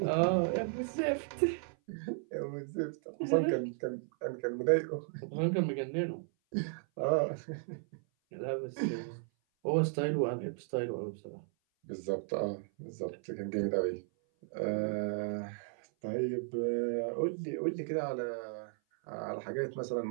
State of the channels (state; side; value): silent; left; 54 dB below the other